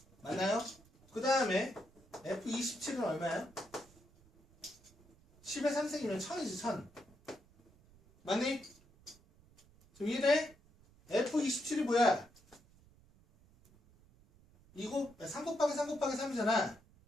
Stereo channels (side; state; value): right; noise; rumble, 28 dB below the sound